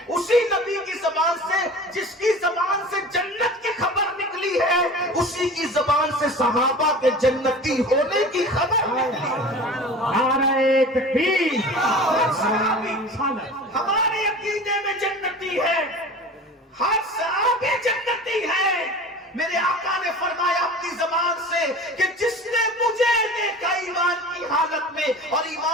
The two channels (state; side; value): normal; both; correlation 0.38